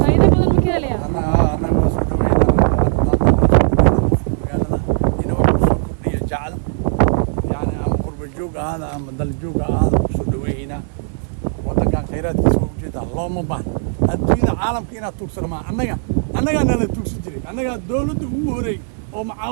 faa'iido badan ma ka helaya هذا عم دلجوج هذا شو دوينا وطن كان خيرات كسوق جيدا الله مبان الدنيا عالم كينا توكسر مع أنا لا توكس جري أنا دولة ووري أو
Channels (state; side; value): silent; left; 63 dB below the other